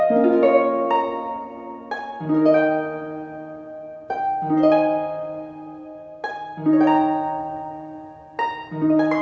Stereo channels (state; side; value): identical; both; correlation 1.00